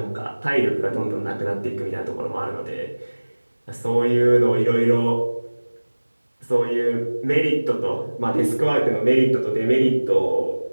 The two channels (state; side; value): inverted; both; correlation -1.00